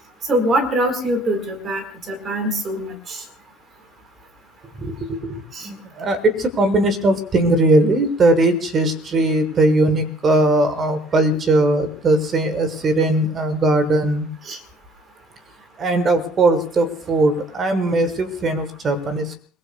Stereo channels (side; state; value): both; normal; correlation 0.59